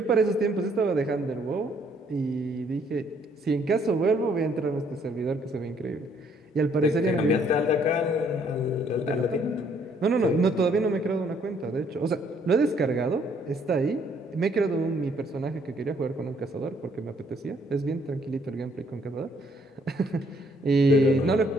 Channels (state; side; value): normal; both; correlation 0.66